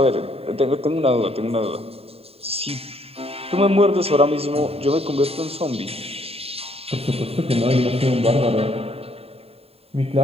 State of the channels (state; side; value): late; left; 0.29 ms